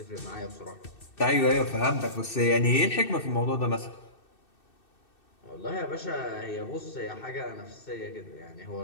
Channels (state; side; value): late; right; 2.6 ms